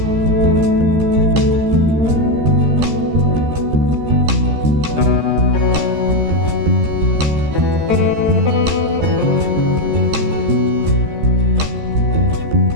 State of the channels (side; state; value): left; late; 13 ms